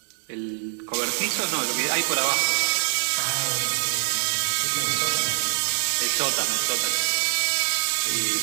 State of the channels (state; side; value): silent; left; 62 dB below the other